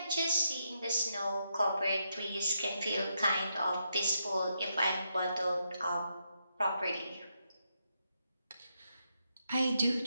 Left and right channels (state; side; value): inverted; both; correlation -0.81